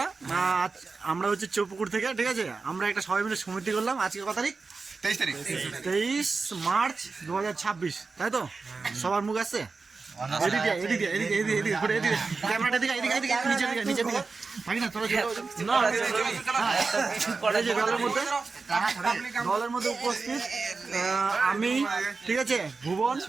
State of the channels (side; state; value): left; quieter; 4.3 dB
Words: আমরা হচ্ছে চৌপুকুর থেকে, ঠিক আছে। আমরা একটা সবাই মিলে সমিতি করলাম। আজকে কত তারিখ? 23 মার্চ 2026, তাই তো? সবার মুখ আসছে? ক্যামেরাটা দিকে নিচে থাকি না, দলের মধ্যে উপস্থিত আমি, ঠিক আছে, ভুবন,